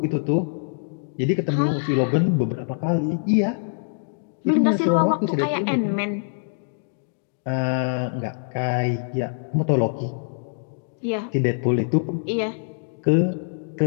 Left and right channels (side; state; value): right; silent; digital silence